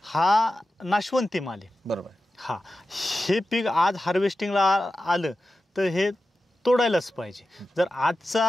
हा नाशवंती माल आहे. बरोबर. हा, हे पीक आज हार्वेस्टिंगला आलं तर हे तोडायलाच पाहिजे. जर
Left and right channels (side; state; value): both; normal; correlation 0.93